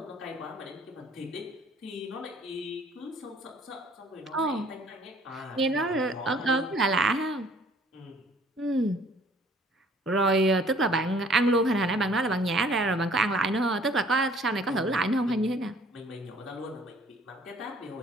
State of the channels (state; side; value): normal; both; correlation 0.57